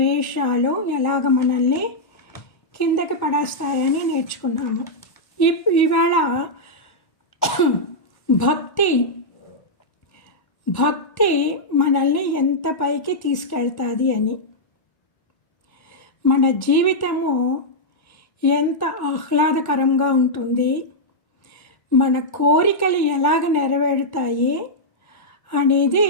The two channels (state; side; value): late; right; 1.1 ms